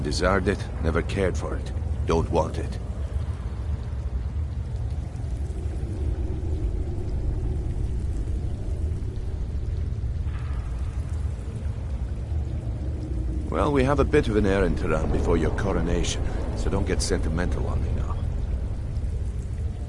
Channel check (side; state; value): both; identical; correlation 1.00